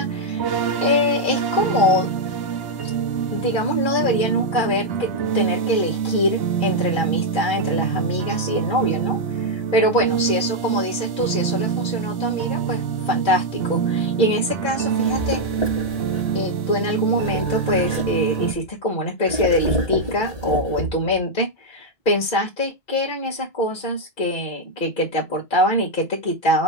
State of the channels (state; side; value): late; right; 2.3 ms